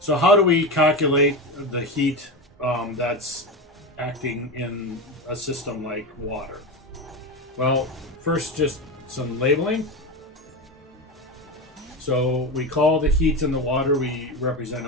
how do we calculate the heat that's acting in a system like water? Well, first just some labeling. So we call the heat in the water, we represent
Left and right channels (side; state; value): both; normal; correlation 0.19